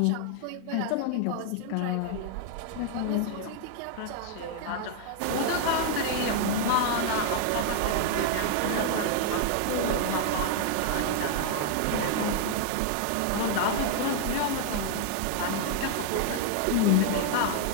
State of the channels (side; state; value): both; different; correlation 0.00